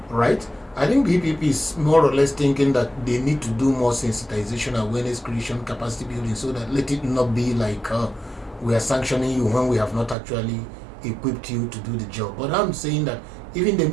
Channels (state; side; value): drops out; left; at 10.2 s